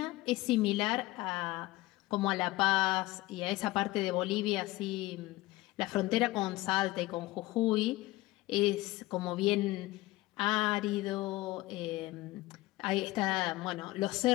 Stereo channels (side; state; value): right; quieter; 18.8 dB